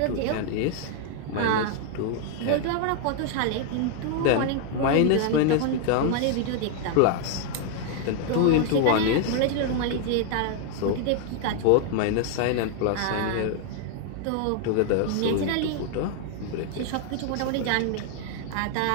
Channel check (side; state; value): both; different; correlation 0.00